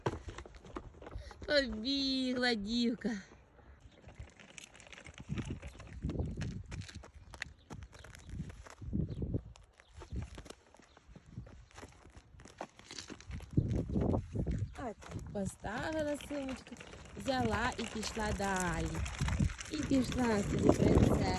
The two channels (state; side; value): identical; both; correlation 1.00